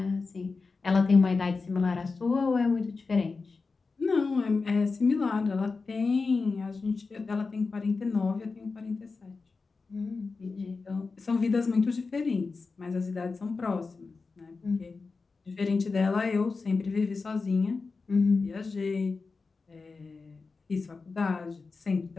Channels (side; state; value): right; quieter; 4.3 dB